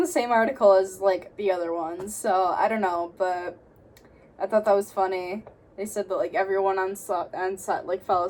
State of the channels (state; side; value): identical; both; correlation 1.00